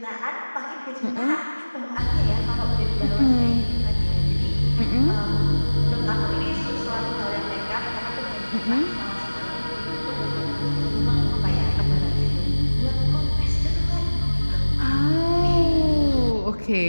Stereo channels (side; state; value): both; inverted; correlation -1.00